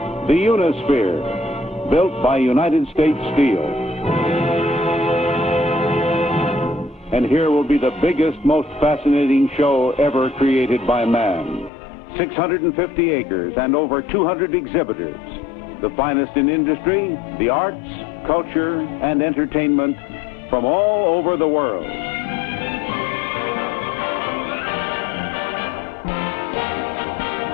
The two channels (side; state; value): right; drops out; at 11.7 s